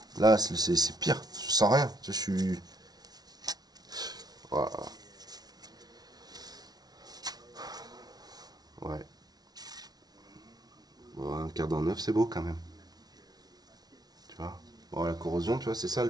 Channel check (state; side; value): late; left; 0.19 ms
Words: Là, c'est pire. Je sens rien. Je suis... Voilà. Ouais. Bon, un quart d'an neuf, c'est beau quand même. Tu vois. Bon, la corrosion, tu vois, c'est ça le